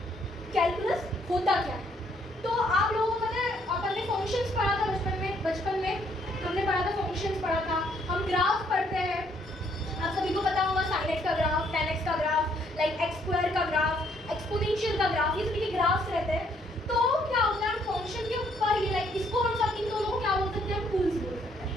कैलकुलस होता क्या है। तो आप लोगों को पता है अपन ने फंक्शंस पढ़ा था बचपन में हमने पढ़ा था, फंक्शंस पढ़ा था। हम ग्राफ पढ़ते हैं, आप सभी को पता होगा sin x का ग्राफ, tan x का ग्राफ, लाइक x स्क्वायर का ग्राफ, एक्सपोनेंशियल का ग्राफ, ये सभी के ग्राफ्स रहते हैं। तो क्या होता है फंक्शन के ऊपर ये लाइक इसको हम सब इन दोनों को क्या बोल सकते हैं, हम टूल्स बोल सकते हैं।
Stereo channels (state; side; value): normal; both; correlation 0.68